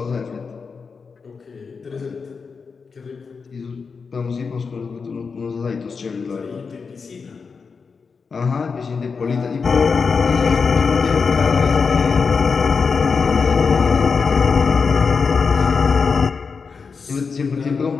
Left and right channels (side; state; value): right; quieter; 5.2 dB